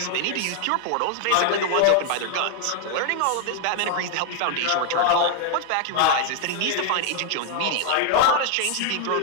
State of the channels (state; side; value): different; both; correlation 0.00